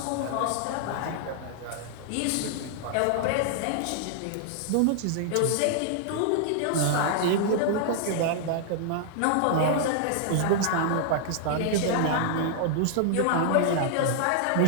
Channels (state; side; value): different; both; correlation -0.01